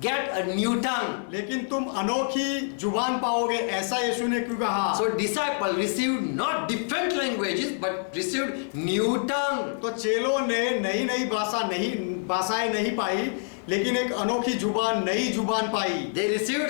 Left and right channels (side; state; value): right; silent; digital silence